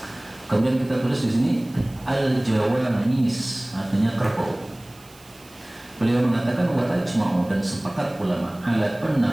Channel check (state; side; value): noise; right; hiss, 25 dB below the sound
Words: Kemudian kita tulis di sini Al-Jawamis, artinya kerbau. Beliau mengatakan wa ajma'u, dan sepakat ulama ala